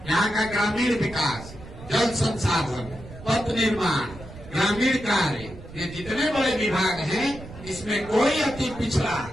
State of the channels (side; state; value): right; noise; rumble, 15 dB below the sound